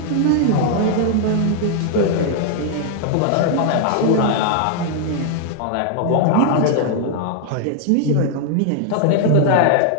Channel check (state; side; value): different; both; correlation -0.01